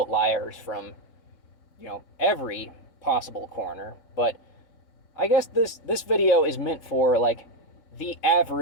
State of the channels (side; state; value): right; late; 3.7 ms